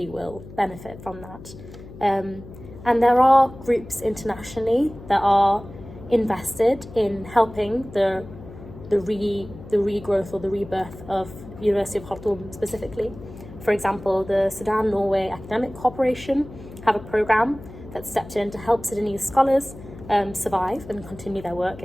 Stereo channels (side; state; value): left; noise; hum, 16 dB below the sound